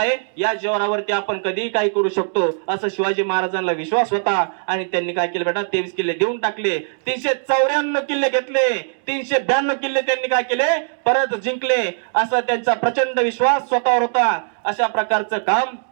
या जोरावरती आपण कधीही काही करू शकतो असं शिवाजी महाराजांना विश्वास होता. आणि त्यांनी काय केलं बेटा, 23 किल्ले देऊन टाकले. 394 किल्ले घेतले, 392 किल्ले त्यांनी काय केले, परत जिंकले. असा त्यांचा प्रचंड विश्वास स्वतःवर होता. अशा प्रकारचं काम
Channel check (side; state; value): left; silent; digital silence